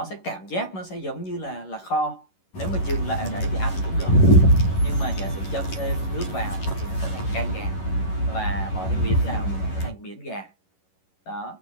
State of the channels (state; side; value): late; right; 11 ms